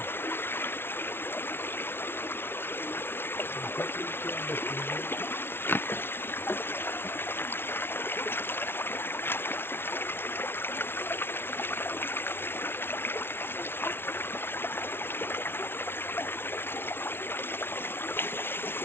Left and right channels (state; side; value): late; right; 0.11 ms